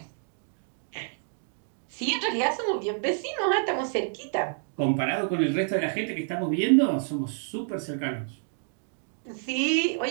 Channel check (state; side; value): silent; left; 59 dB below the other